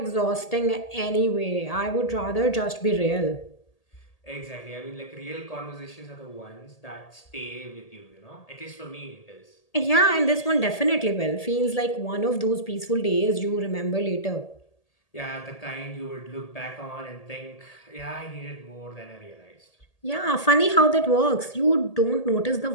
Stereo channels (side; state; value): right; late; 1.8 ms